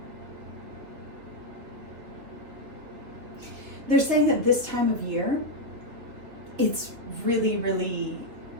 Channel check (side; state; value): left; late; 3.0 ms